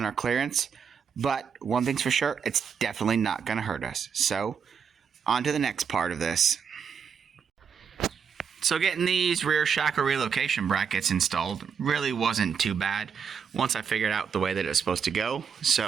our clearance, but one thing's for sure, it's definitely not going to hurt us. So, on to the next part of this. So getting these rear shackle relocation brackets installed really wasn't too bad once I figured out the way that it's supposed to go.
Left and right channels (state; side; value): quieter; left; 6.8 dB